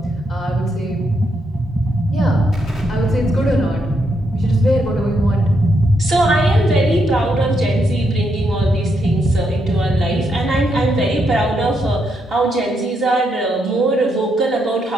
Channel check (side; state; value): both; normal; correlation 0.79